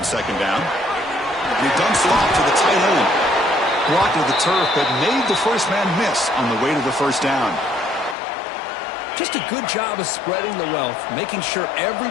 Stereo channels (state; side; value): drops out; right; at 8.2 s